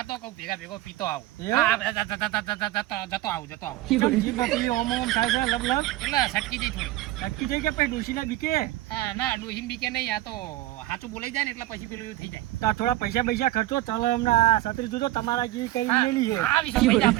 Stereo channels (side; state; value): left; quieter; 16.4 dB